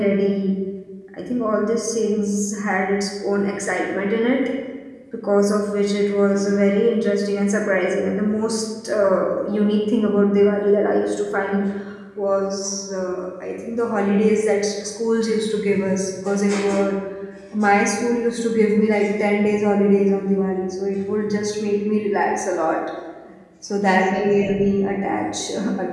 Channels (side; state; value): both; identical; correlation 1.00